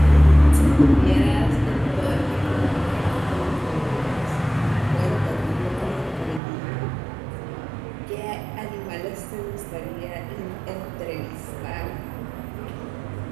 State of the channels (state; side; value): drops out; left; at 6.4 s